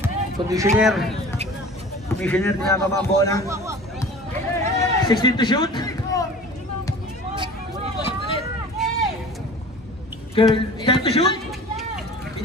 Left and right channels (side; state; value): both; normal; correlation 0.42